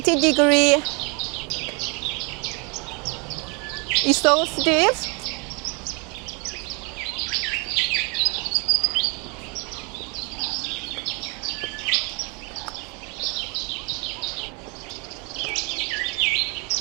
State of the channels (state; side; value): quieter; left; 32.0 dB